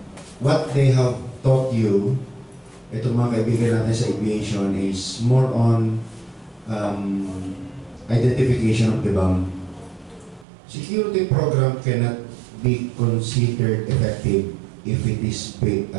what they have taught you, itong mga kaibigan natin sa aviation, is more on identification of the bomb. Security program cannot be considered effective if it is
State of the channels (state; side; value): drops out; left; at 10.5 s